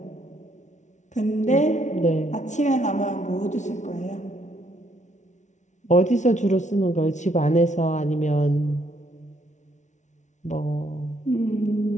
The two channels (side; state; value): right; late; 0.35 ms